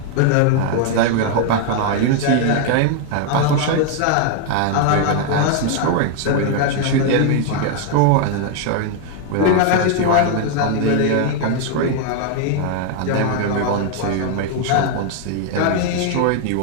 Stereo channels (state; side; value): different; both; correlation 0.00